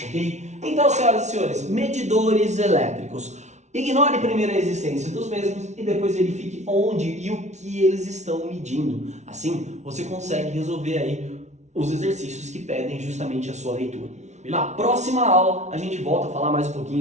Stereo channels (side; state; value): left; late; 0.33 ms